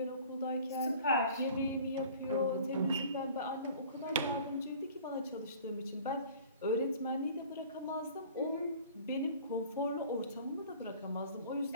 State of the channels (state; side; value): inverted; both; correlation -0.47